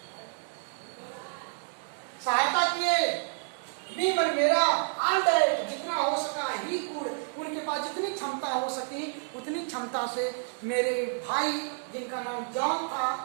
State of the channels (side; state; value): left; silent; digital silence